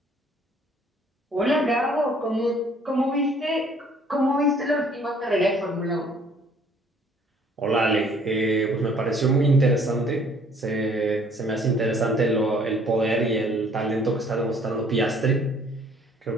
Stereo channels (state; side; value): normal; both; correlation 0.59